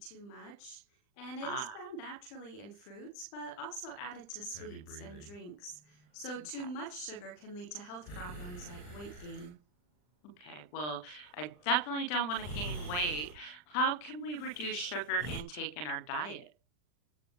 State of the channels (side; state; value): right; late; 40 ms